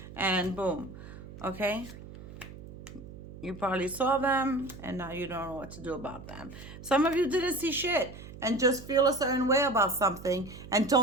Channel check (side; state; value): right; noise; hum, 15 dB below the sound